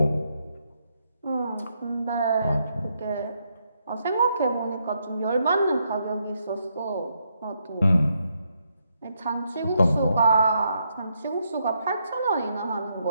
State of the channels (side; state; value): both; inverted; correlation -0.78